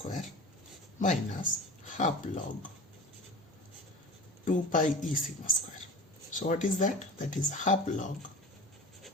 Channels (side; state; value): both; normal; correlation 0.35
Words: minus half log 2 pi E sigma square. So what is that? That is half log